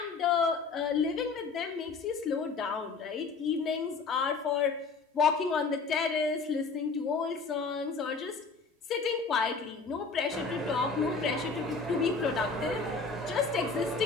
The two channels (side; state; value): right; quieter; 4.5 dB